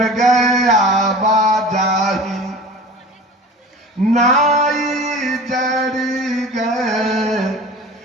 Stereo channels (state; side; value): normal; both; correlation 0.39